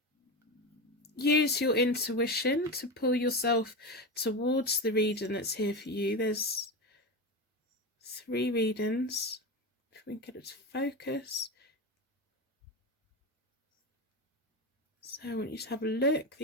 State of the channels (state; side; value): normal; both; correlation 0.20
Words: use your intuition to pull yourself towards the reading that's here for you. There's 3 readings. If we can get it to focus. So I want you to have a look.